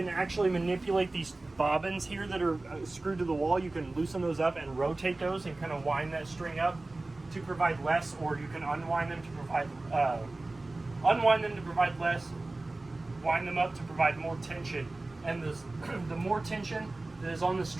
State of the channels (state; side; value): quieter; left; 3.0 dB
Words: actually manipulate these bobbins here that are screwed to the wall. You can loosen those up and rotate those and kind of wind that string up to provide less, or you can unwind them to provide less, wind them up to provide more tension. And the more tension that is on the